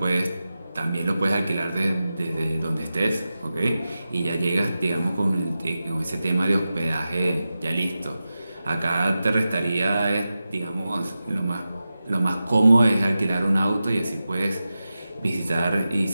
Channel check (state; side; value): inverted; both; correlation -0.93